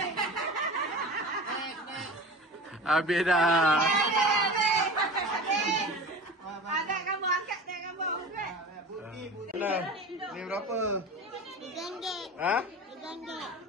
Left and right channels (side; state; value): both; normal; correlation 0.34